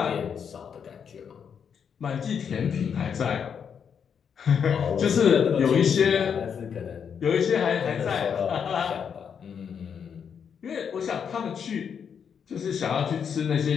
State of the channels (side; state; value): right; quieter; 7.3 dB